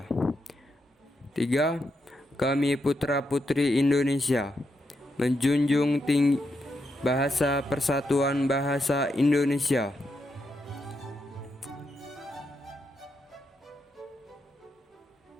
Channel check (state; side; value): normal; both; correlation 0.83